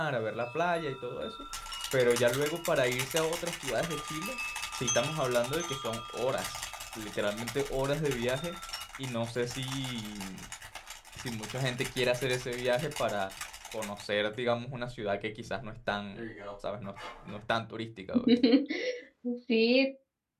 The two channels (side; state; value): both; identical; correlation 1.00